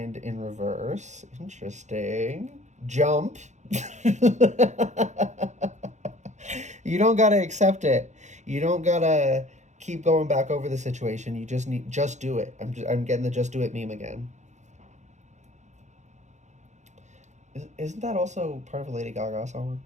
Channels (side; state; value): left; late; 0.34 ms